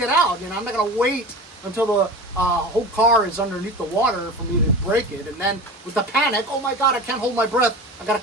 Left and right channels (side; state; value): both; normal; correlation 0.33